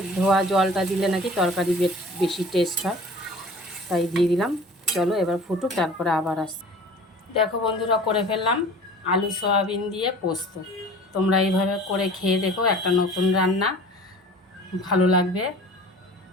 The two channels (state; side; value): normal; both; correlation 0.44